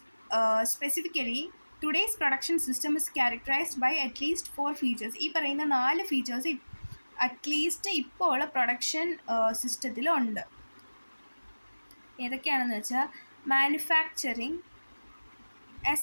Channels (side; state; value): both; inverted; correlation -1.00